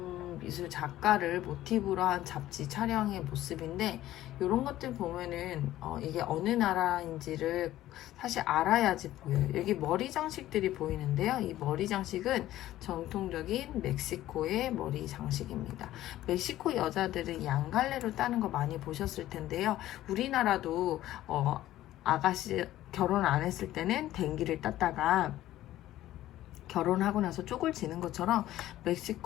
미술 작가를 모티브로 한 잡지 촬영의 모습인데, 이런 것들 보면은 이게 어느 나라인지를 사실 알아야지 보여요. 여기 머리 장식들이 보이는데요. 이 머리 장식은 전통적인 멕시코의 머리 장식입니다. 멕시코 여자들은 양갈래로 따는 거 많이 보셨을 텐데요. 우리나라도 아가씨 결혼 안 했을 때는 댕기를 땄다가 결혼하고 나서 쪽을 지는 것처럼,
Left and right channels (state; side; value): quieter; right; 14.3 dB